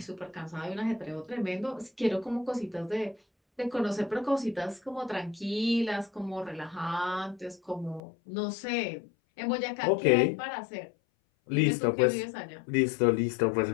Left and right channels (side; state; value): right; drops out; at 8.0 s